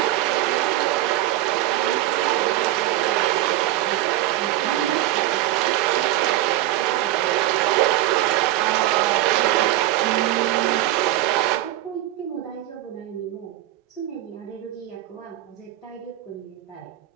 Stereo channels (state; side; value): quieter; left; 14.7 dB